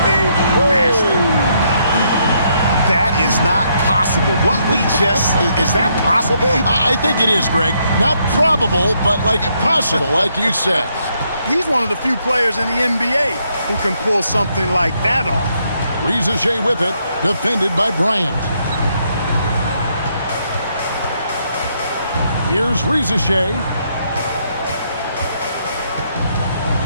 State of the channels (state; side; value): inverted; both; correlation -0.74